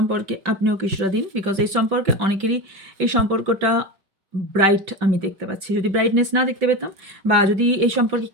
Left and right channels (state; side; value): late; left; 5.1 ms